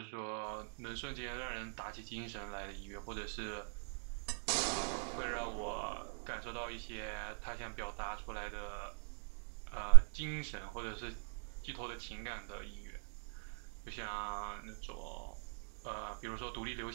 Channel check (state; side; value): silent; left; 51 dB below the other